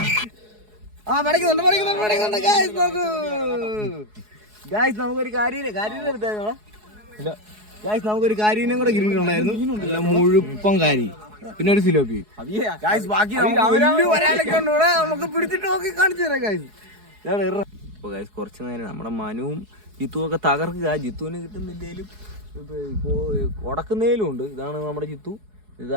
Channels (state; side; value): late; left; 4.7 ms